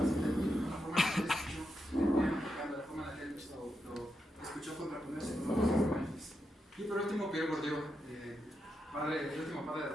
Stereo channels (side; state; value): both; normal; correlation 0.85